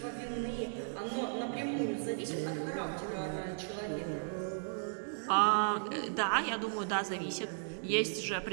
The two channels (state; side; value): silent; left; digital silence